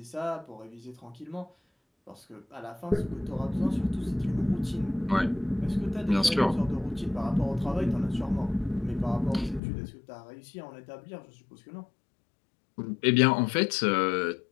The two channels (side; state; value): right; drops out; at 9.6 s